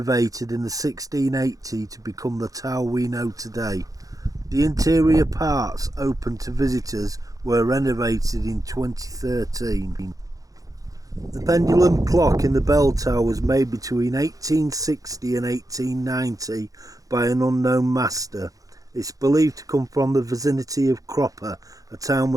in the 1680 to become the tower we know today. The interior parts open to visitors were renovated in 2013. The pendulum clock in the bell tower was made between 1860 and 1890 by an unknown master. It's believed to come from the vicinity of Cropper, a town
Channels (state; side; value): late; left; 0.17 ms